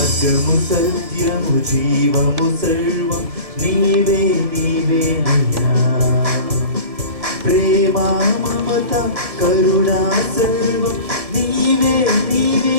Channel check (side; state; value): left; late; 1.7 ms